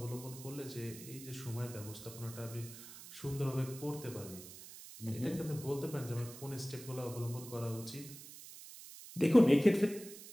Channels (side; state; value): right; noise; hiss, 15 dB below the sound